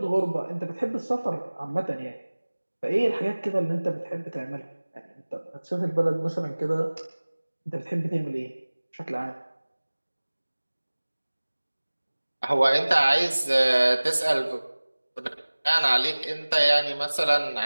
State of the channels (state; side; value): inverted; both; correlation -1.00